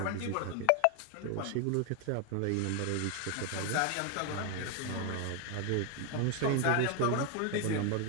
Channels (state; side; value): different; both; correlation 0.01